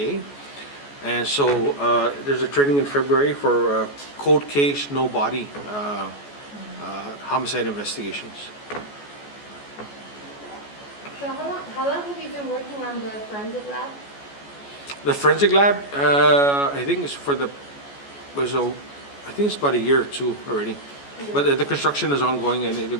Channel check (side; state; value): right; late; 14 ms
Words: And so there's a training in February for cold case, no body homicide investigations. So how long have you been working on the forensic lab? The forensic lab, I think it's I think it's about a year or two already. But the construction is ongoing, and it'll